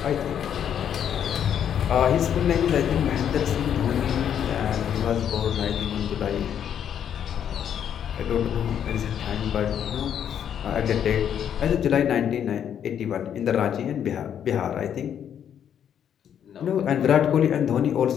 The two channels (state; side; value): quieter; right; 9.1 dB